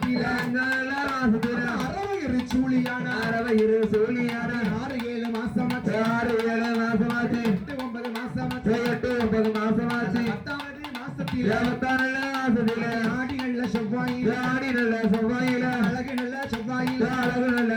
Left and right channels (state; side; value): identical; both; correlation 1.00